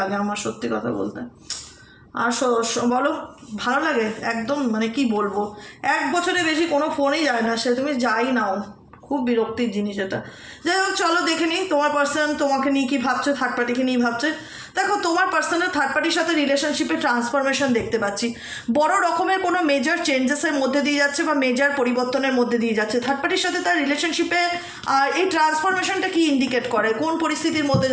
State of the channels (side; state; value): both; identical; correlation 1.00